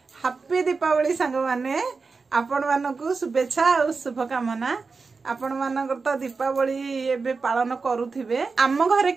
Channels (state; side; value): quieter; left; 4.5 dB